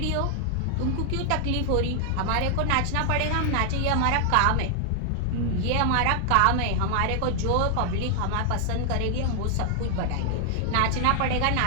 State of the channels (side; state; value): both; different; correlation 0.00